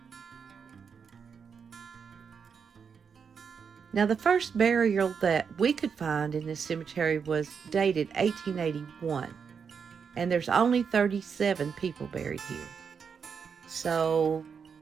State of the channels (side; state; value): left; quieter; 6.4 dB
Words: Now, the first burial that we could find in this cemetery was dated 1881, and there's only 37 people buried here. So